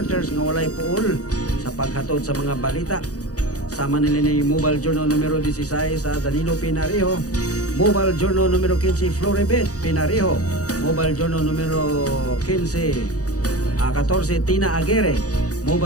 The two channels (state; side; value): late; right; 0.67 ms